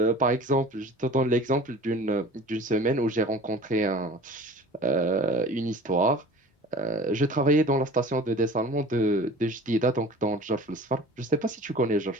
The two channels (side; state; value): both; normal; correlation 0.42